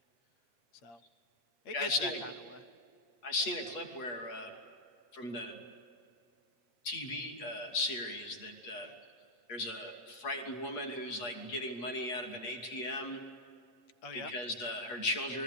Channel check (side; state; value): right; late; 8.3 ms